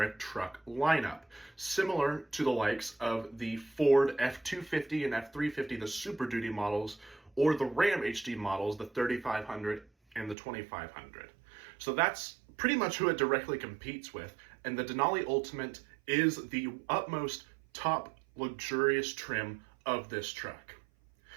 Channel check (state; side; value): drops out; left; at 10.4 s